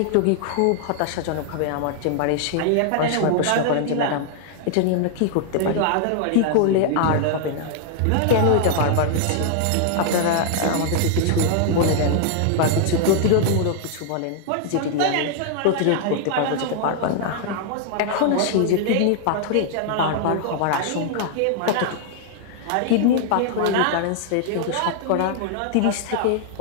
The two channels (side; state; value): both; different; correlation 0.00